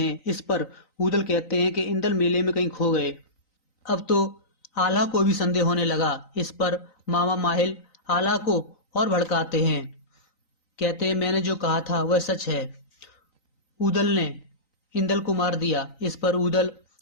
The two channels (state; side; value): late; right; 3.9 ms